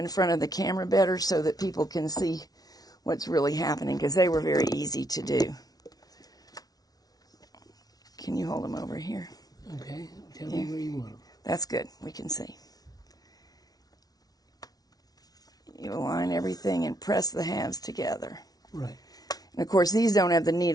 front of the camera better so that people can see what's really happening, because they were very easy to do. Can you hold them over here? Okay. Tell me where you want them. That's good. We can see. You align everything and press the halves together. Right. And of course, these don't have the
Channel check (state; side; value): late; right; 0.19 ms